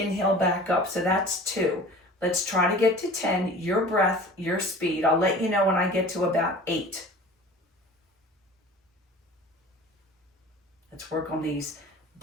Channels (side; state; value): both; normal; correlation 0.42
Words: back up. So that's 2. Let's try to get to 10. Your breath, your speed. I'll let you know when I get to about 8. Let's work on these